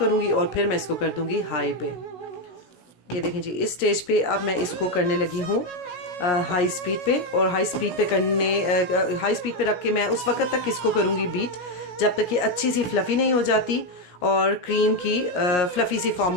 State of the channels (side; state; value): right; late; 17 ms